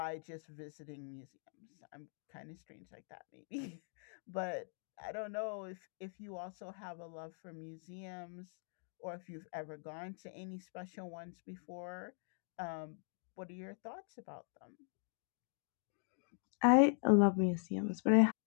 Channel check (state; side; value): silent; right; 50 dB below the other